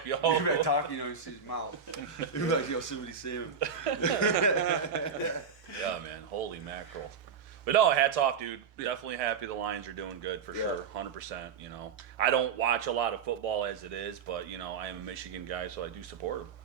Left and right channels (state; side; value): quieter; left; 6.4 dB